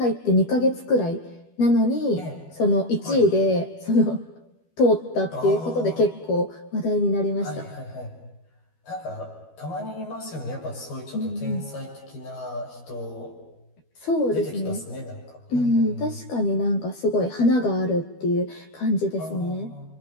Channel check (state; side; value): late; right; 12 ms